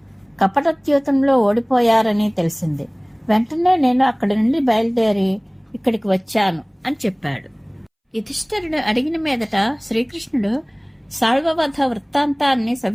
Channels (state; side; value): identical; both; correlation 1.00